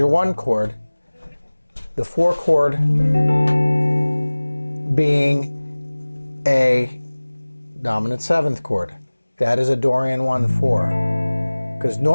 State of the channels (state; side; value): inverted; both; correlation -1.00